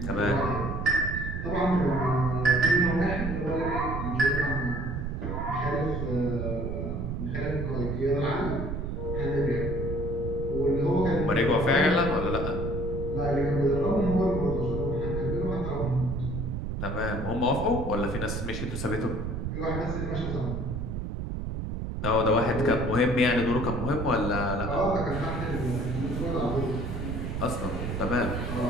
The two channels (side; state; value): right; noise; rumble, 3 dB below the sound